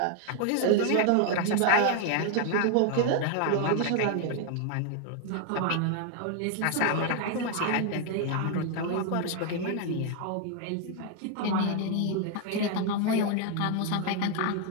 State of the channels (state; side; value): different; both; correlation 0.00